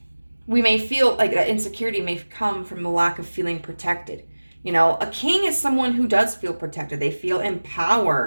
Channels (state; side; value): inverted; both; correlation -1.00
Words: we may feel like that insecurity may come from the lack of feeling protected. A king is someone who does feel protected. They feel in